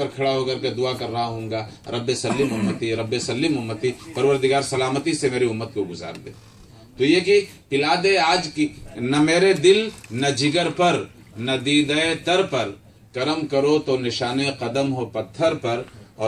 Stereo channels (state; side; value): identical; both; correlation 1.00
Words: کھڑا ہو کر کے دعا کر رہا ہوں گا رب سلم امتی، رب سلم امتی، پروردگار سلامتی سے میری امت کو گزار دے. تو یہ کہ پلا دے آج کی، نہ میرے دل، نہ جگر پر، ندیدہ تر پر، کرم کرو تو نشانے قدم ہو پتھر پر،